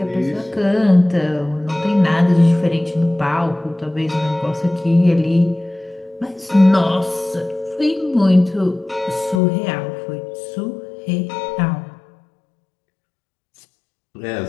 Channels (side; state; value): right; drops out; at 9.4 s